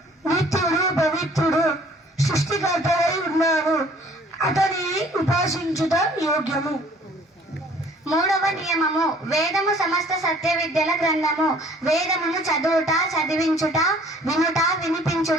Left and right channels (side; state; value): both; normal; correlation 0.55